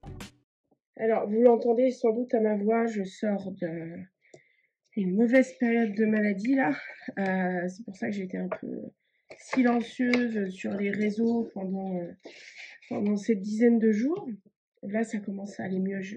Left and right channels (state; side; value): identical; both; correlation 1.00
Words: Alors, vous l'entendez sans doute à ma voix, je sors d'une mauvaise période de maladie là. C'est pour ça que j'ai été un peu silencieuse sur les réseaux pendant cette dizaine de jours. Là, ça commence à aller mieux.